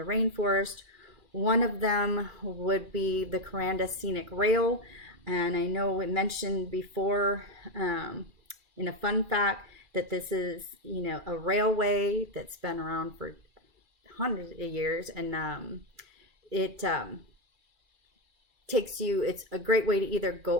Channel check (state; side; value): late; left; 2.4 ms